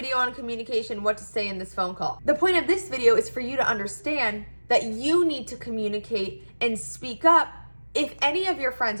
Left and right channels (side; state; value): both; inverted; correlation -1.00